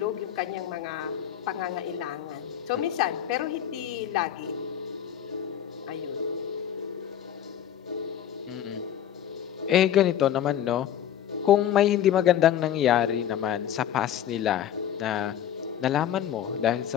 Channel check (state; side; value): quieter; right; 10.3 dB